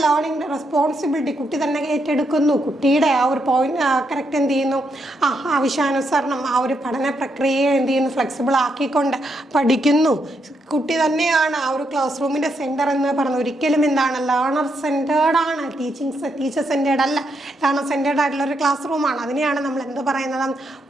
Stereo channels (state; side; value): normal; both; correlation 0.79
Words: റെസ്പോൺസിബിലിറ്റി കുട്ടി തന്നെ ഏറ്റെടുക്കുന്നു. കുട്ടിയുടെ ആ ഒരു പോയിന്റ് കറക്റ്റ് എന്ത് ചെയ്യുന്നു, ആവശ്യാനുസരണം ആ ഒരു പഠന പ്രക്രിയയെ എന്ത് ചെയ്യുന്നു, ഫ്ലെക്സിബിൾ ആക്കിക്കൊണ്ട് പഠിക്കുന്നു. കുട്ടി തന്നെയാണ് ആ ഒരു ക്ലാസ് റൂമിൻ്റെ സെൻറ്റർ എന്ന് പറയുന്നത്. ഒരിക്കലും എന്താണ് ലേണർ സെൻറ്റേർഡ് ആണ്, ടീച്ചർ സെൻറ്റേർഡ് അല്ല, ലേണർ സെൻറ്റേർഡ് ആയിട്ടുള്ള ഒരു ക്ലാസ് റൂമാണ്. അതിനെയാണ് നമ്മൾ എന്ത് പറയുന്നത്?